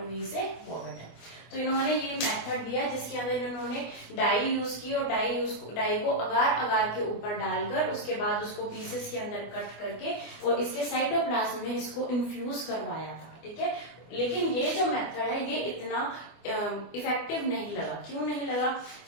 वी से वॉगट है। तो इन्होंने ये मेथड दिया जिसके अंदर इन्होंने डाई यूज की और डाई को अगार अगार के ऊपर डालकर उसके बाद उसको पीसेस के अंदर कट करके और इसके साइटोप्लाज्म में इसको इन्फ्यूज करवाया था। ठीक है, लेकिन ये जो मेथड है ये इतना इफेक्टिव नहीं लगा। क्यों नहीं लगा,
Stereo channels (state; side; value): late; right; 24 ms